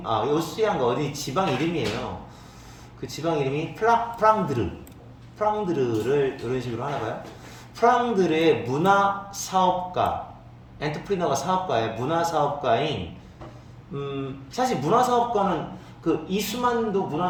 오스트리아인가 어디 지방 이름이에요. 그 지방 이름이 프랑드르를 이런 식으로 하나 봐요. 프랑드르의 문화 사업가, 엔터프리너가 사업가의 문화 사업가인 사실 문화 사업가는 그 이수만도 문화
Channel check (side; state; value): both; identical; correlation 1.00